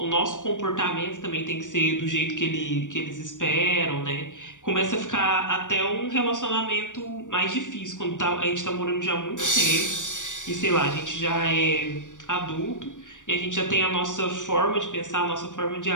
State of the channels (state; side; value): late; right; 0.87 ms